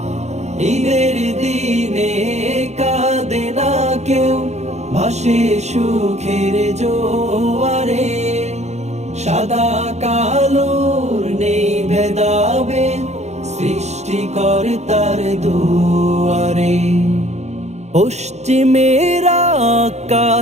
ঈদের দিনে কাঁদে না কেউ ভাসে সুখের জোয়ারে সাদা কালোর নেই ভেদাভেদ সৃষ্টিকর্তার দুয়ারে পশ্চিমের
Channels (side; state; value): left; late; 0.32 ms